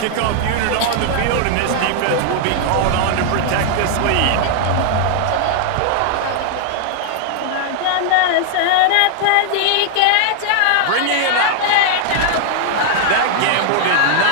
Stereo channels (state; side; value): different; both; correlation -0.01